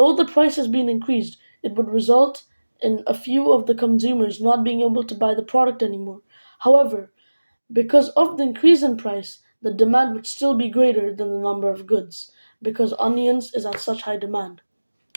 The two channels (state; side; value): inverted; both; correlation -1.00